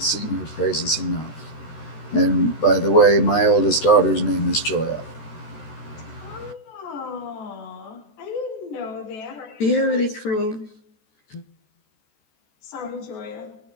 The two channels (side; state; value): right; late; 14 ms